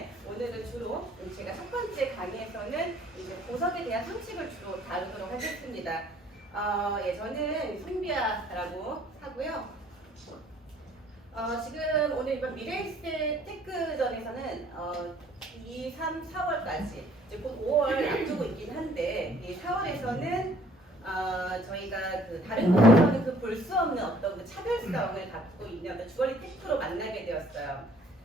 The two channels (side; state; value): both; normal; correlation 0.58